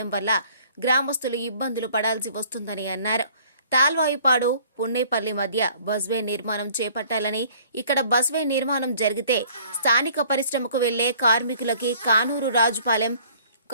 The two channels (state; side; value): inverted; both; correlation -0.55